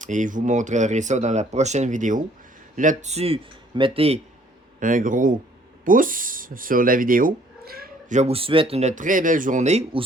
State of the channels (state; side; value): normal; both; correlation 0.60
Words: Et je vous montrerai ça dans la prochaine vidéo. Là-dessus, mettez un gros pouce sur la vidéo. Je vous souhaite une très belle journée ou